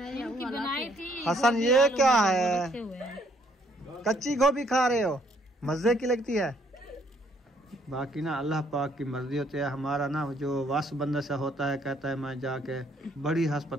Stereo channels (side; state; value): both; normal; correlation 0.67